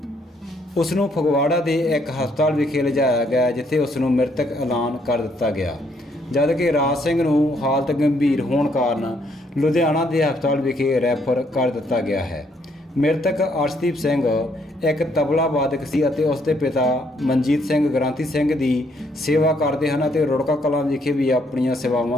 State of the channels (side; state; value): both; normal; correlation 0.70